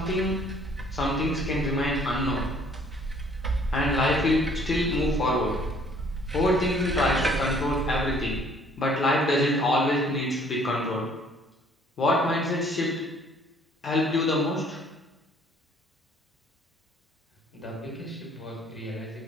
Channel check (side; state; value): both; normal; correlation 0.59